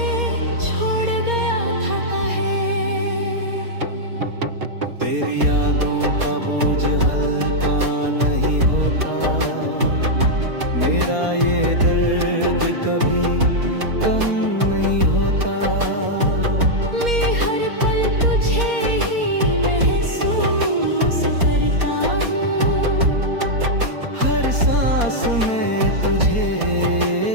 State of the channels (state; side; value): late; left; 4.2 ms